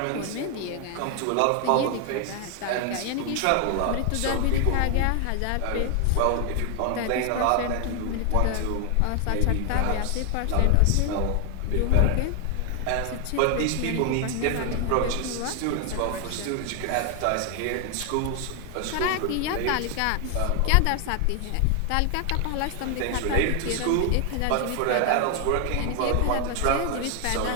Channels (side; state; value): both; different; correlation 0.00